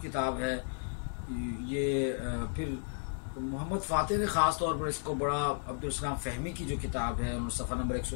है। ये फिर मोहम्मद फ़ातेह ने ख़ास तौर पर इसको बड़ा अब्दुल सलाम फ़हमी की जो किताब है उन्होंने सफ़ा नंबर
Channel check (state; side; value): silent; right; 55 dB below the other